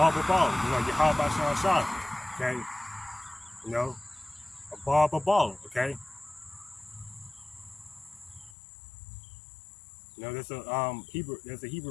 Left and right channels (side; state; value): right; drops out; at 8.6 s